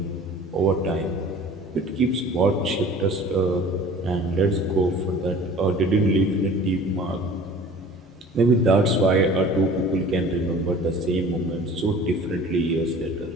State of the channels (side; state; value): both; normal; correlation 0.45